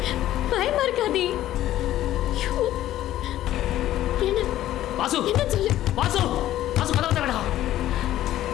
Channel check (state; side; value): quieter; right; 13.5 dB